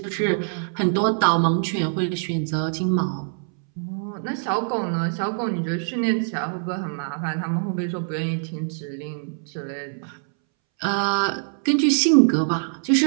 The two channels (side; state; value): left; silent; 63 dB below the other